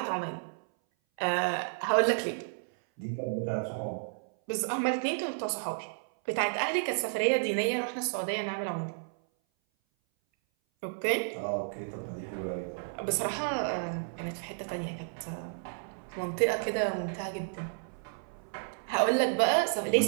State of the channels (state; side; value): silent; left; 57 dB below the other